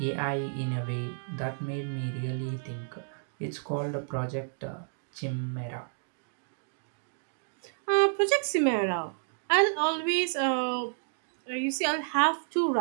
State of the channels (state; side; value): silent; left; digital silence